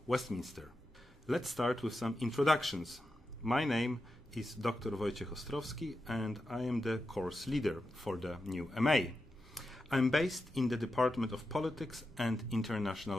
Westminster. Let's start with some introductions. My name is Dr. Wojciech Ostrowski, and I am the course leader for the new MA. I'm based in the Department of Politics and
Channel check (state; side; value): normal; both; correlation 0.89